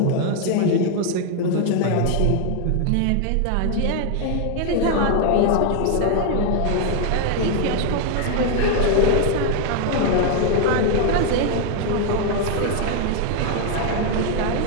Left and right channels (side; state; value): both; different; correlation 0.00